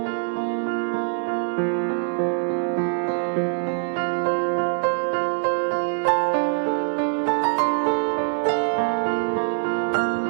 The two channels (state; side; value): silent; left; digital silence